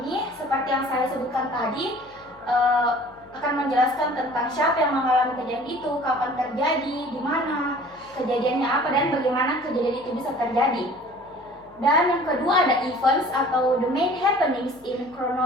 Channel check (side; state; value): left; noise; hum, 29 dB below the sound